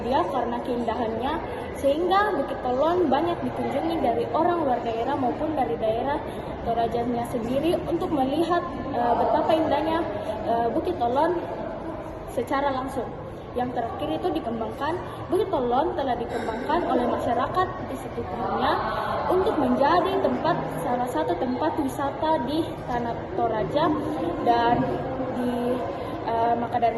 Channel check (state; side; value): identical; both; correlation 1.00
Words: karena keindahannya, sehingga Bukit Olon banyak dikunjungi dari orang luar daerah maupun dari daerah Torajanya sendiri untuk melihat betapa indahnya Bukit Olon secara langsung. Yang terakhir itu dikembangkan, Bukit Olon telah dikembangkan oleh masyarakat di sekitarnya untuk menjadi salah satu tempat wisata di Tanah Toraja, dan maka